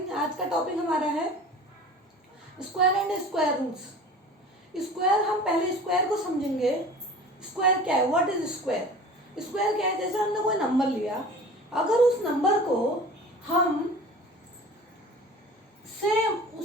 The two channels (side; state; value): both; normal; correlation 0.41